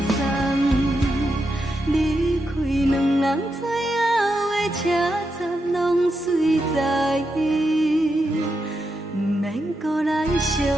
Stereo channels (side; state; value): both; normal; correlation 0.85